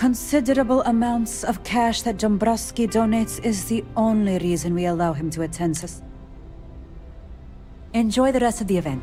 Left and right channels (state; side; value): identical; both; correlation 1.00